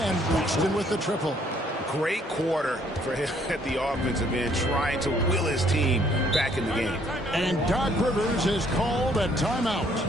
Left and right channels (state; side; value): normal; both; correlation 0.64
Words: Boston with the triple. Great quarter for him at the offensive end, trying to will his team back in the game. And Doc Rivers has called a timeout.